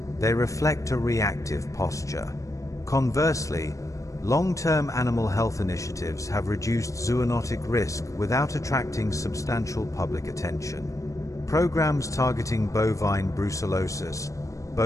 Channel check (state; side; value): late; right; 0.16 ms